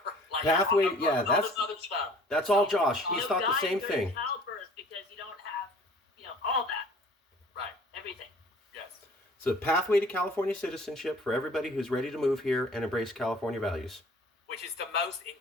Pathway, all this other stuff. That's all Josh. He's thought the same thing. Childbirth, because you don't have, all that. Right. Everything. Yes. It's a pathway to California citizenship for everybody who's ready to move here and embrace California values. Which is the most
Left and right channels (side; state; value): both; normal; correlation 0.51